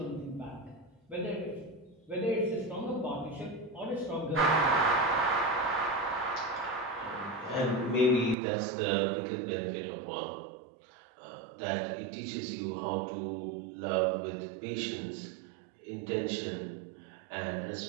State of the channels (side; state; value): left; drops out; at 8.3 s